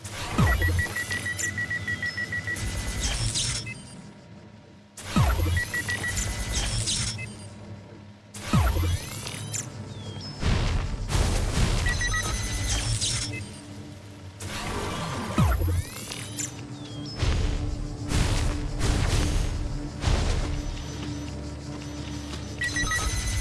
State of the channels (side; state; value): both; identical; correlation 1.00